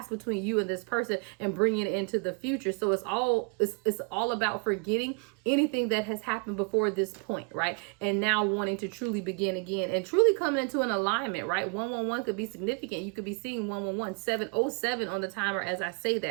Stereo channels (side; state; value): left; quieter; 34.9 dB